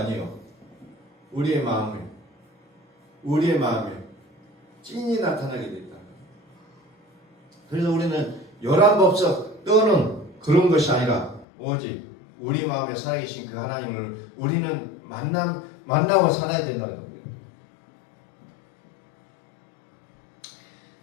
우리의 마음에 찐이 나타나게 된다. 그래서 우리는 요란법석 떠는 그런 것이 아니라 오직 우리 마음에 살아계신 그 하나님을 우리는 만나고 살아야 된다는 겁니다.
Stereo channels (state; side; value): drops out; right; at 11.5 s